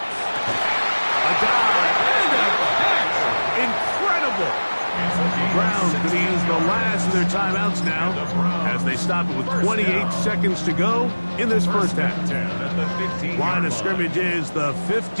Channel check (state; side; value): inverted; both; correlation -1.00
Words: A dive and a catch. Incredible. Browns going to use the last of their timeouts now as they stop it with 28 seconds to go in this first half. Line of scrimmage is the